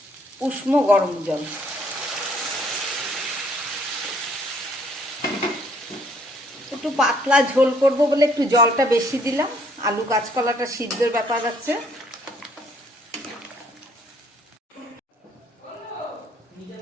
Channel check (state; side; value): normal; both; correlation 0.64